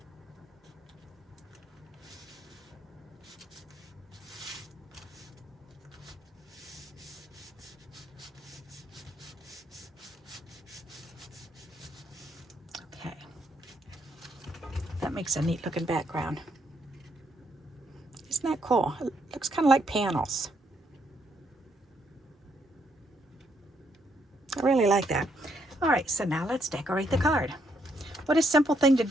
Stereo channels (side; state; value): both; normal; correlation 0.74